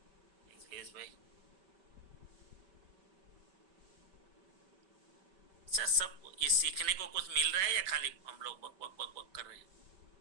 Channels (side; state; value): left; late; 5.3 ms